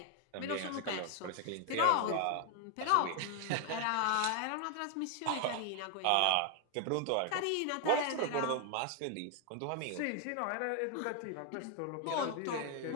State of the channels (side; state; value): both; different; correlation 0.00